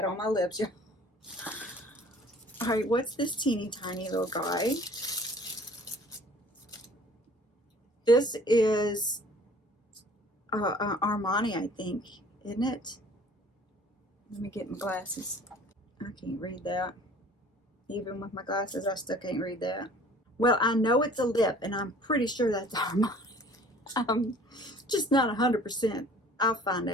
on my lips. All right, what's this teeny tiny little guy? This is Armani, I think, isn't it? Let me get my glasses. I can't read that. Even with my glasses, I still can't read that. Well, I know it's a lip, and I'm pretty sure that's Armani. I'm just not 100%. I'll find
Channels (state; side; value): normal; both; correlation 0.50